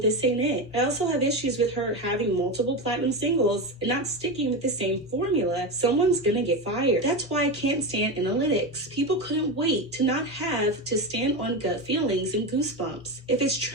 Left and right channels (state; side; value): normal; both; correlation 0.18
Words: ain't it. I also have issues with her having multiple platinum singles and not sticking with the same formula. Someone's gonna get fired. That's why I can't stand analytics. People couldn't wait to not have to stand on gut feelings and goosebumps. If it's